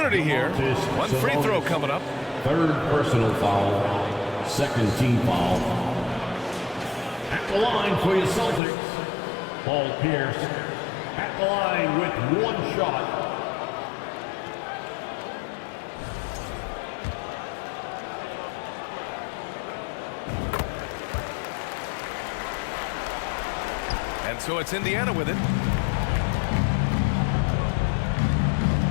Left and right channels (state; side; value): drops out; right; at 8.6 s